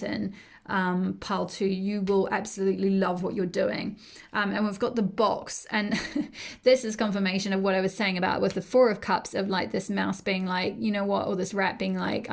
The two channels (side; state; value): both; identical; correlation 1.00